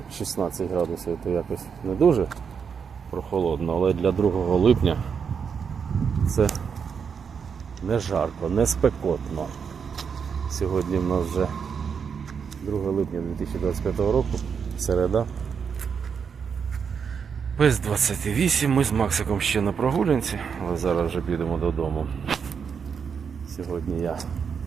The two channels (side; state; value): left; quieter; 6.5 dB